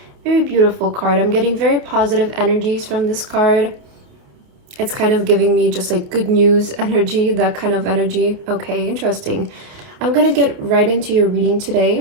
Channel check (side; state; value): left; late; 28 ms